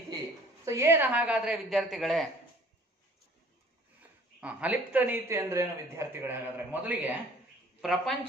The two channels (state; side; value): normal; both; correlation 0.52